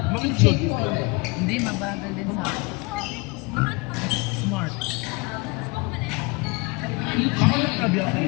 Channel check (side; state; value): right; quieter; 27.4 dB